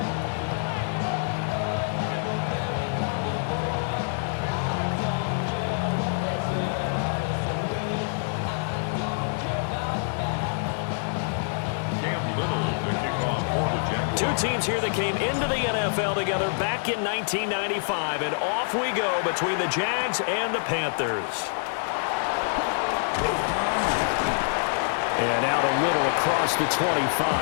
Two teams here that came into the NFL together back in 1995, and off we go between the Jags and the Panthers. And out a little across the 25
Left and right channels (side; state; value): right; silent; digital silence